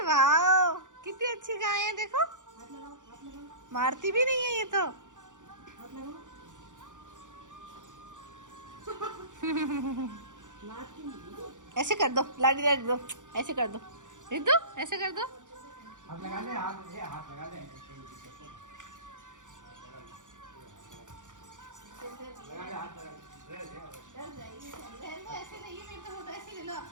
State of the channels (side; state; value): left; late; 0.86 ms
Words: वाह, कितनी अच्छी गाय है, देखो मारती भी नहीं है ये तो। ऐसे कर दो, लाडी रख दो, ऐसे कर दो, रख दो, ऐसे कर दो। हाथ लगा ले, हाथ लगा ले, ऐसे नहीं है, मेरे तो ऐसे ले लो,